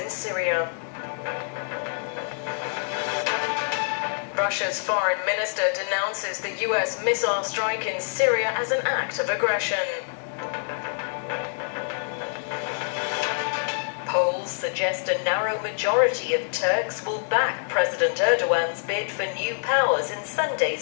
Syria. Russia's foreign minister denounces the US missile strike in Syria as an act of aggression. Polls suggest a narrow majority of Turks will back President Erdogan's bid for new powers in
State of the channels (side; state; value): right; silent; digital silence